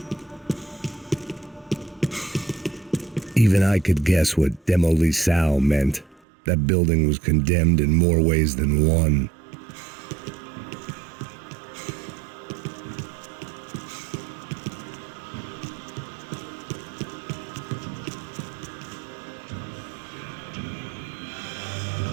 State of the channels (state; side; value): drops out; left; at 6.2 s